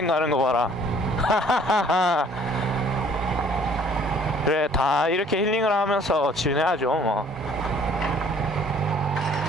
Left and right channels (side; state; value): both; normal; correlation 0.56